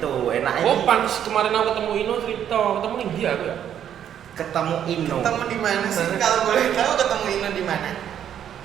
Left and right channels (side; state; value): left; quieter; 9.7 dB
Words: enak Oh, panis kemarin aku ketemu Ino cerita, ketemu ning dia aku ya. ketemu Ino. Ketemu di mana sih? Kalau boleh tahu ketemu Ino di mana?